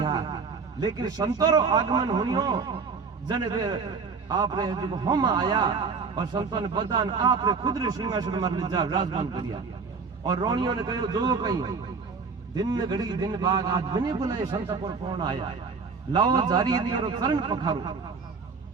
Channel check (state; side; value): quieter; left; 5.0 dB